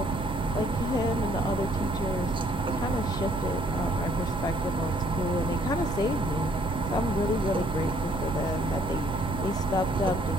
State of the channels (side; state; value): right; noise; hum, 11 dB below the sound